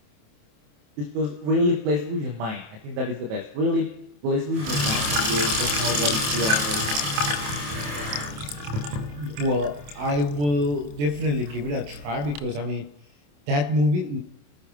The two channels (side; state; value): left; late; 27 ms